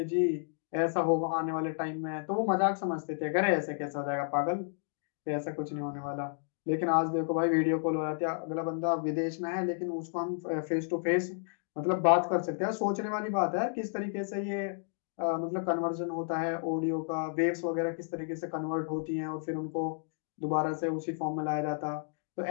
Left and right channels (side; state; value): right; silent; digital silence